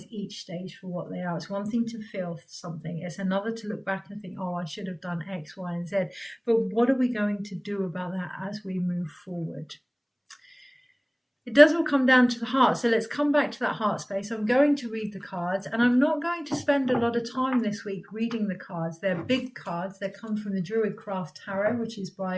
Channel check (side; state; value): both; identical; correlation 1.00